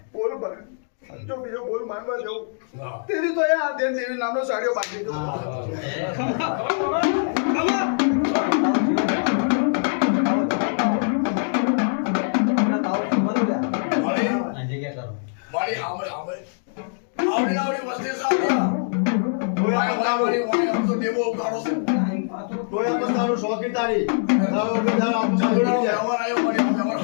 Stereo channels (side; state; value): right; silent; digital silence